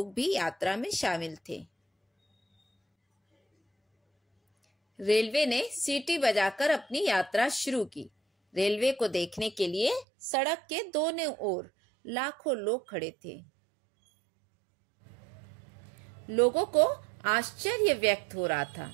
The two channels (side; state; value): left; drops out; at 10.1 s